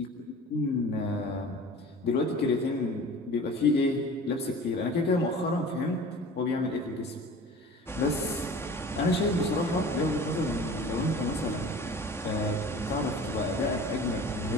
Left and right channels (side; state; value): both; normal; correlation 0.41